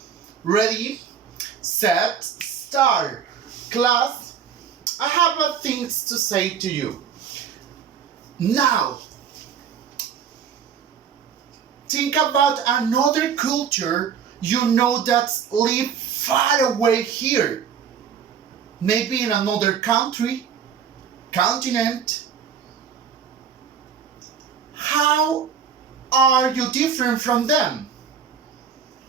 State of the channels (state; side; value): quieter; left; 7.5 dB